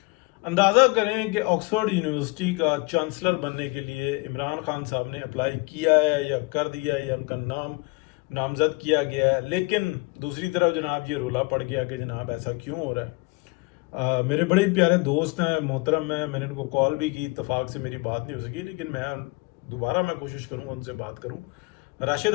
अंदाज़ा करें कि ऑक्सफोर्ड यूनिवर्सिटी का चांसलर बनने के लिए इमरान खान साहब ने अप्लाई किया है या कर दिया है या उनका नाम नामजद किया गया है, लेकिन दूसरी तरफ जनाब ये रोला पड़ गया कि जनाब ऐसा क्यों हो रहा है। मेरे बड़े प्यारे दोस्त हैं, मोहतरम हैं, मैंने उनको कॉल भी की, इत्तफाक से मेरी बात नहीं हो सकी, लेकिन मैं कोशिश करूँगा उनसे बात करूँ। राशिद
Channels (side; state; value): right; quieter; 27.2 dB